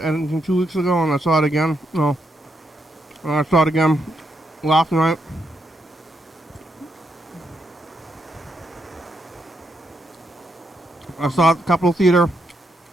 editing 2 weeks ago, and I saw it again. No. And I saw it again last night. I saw it at the Capitol Theater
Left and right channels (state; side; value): normal; both; correlation 0.80